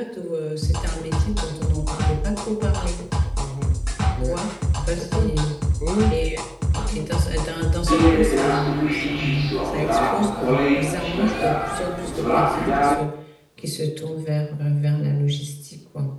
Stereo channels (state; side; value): identical; both; correlation 1.00